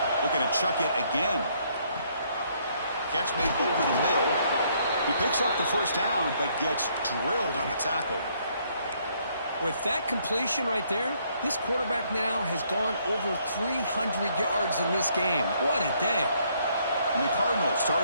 Looking to chuck it again. Catch made over the middle. He picks up the 1st down, but gets drilled on the tackle. With that completion right there, this quarterback now has gone over 300 yards in this game. What a day. And the Cardinals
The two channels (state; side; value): inverted; both; correlation -0.68